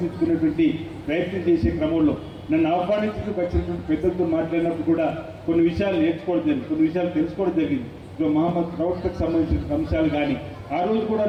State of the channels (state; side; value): identical; both; correlation 1.00